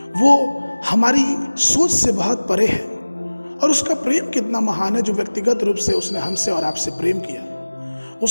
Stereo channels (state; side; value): inverted; both; correlation -1.00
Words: वो हमारी सोच से बहुत परे है, और उसका प्रेम कितना महान है जो व्यक्तिगत रूप से उसने हमसे और आपसे प्रेम किया।